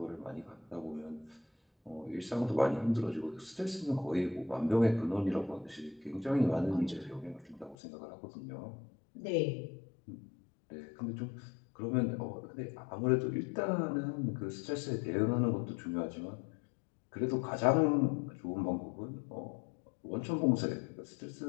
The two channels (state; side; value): drops out; right; at 7.8 s